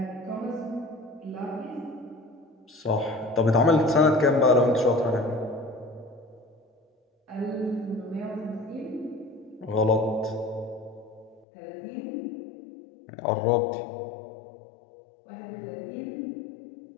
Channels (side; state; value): right; drops out; at 11.5 s